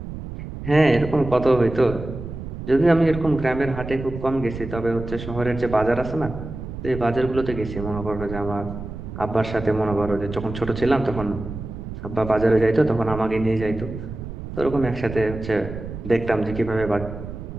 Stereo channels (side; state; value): right; noise; rumble, 9 dB below the sound